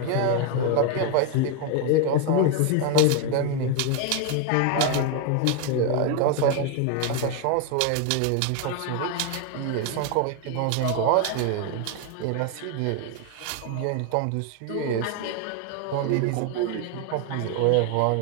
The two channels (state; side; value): different; both; correlation 0.01